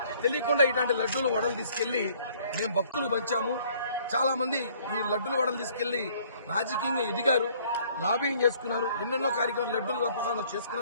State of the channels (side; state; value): both; inverted; correlation -0.59